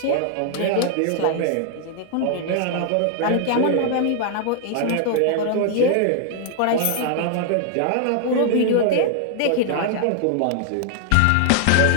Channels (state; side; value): different; both; correlation 0.00